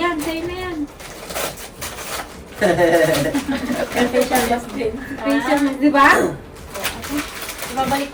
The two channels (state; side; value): identical; both; correlation 1.00